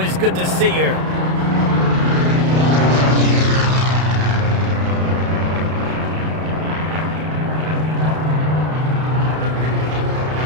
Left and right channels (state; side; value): late; left; 32 ms